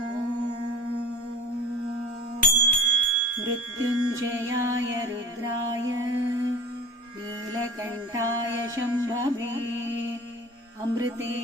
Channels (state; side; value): normal; both; correlation 0.38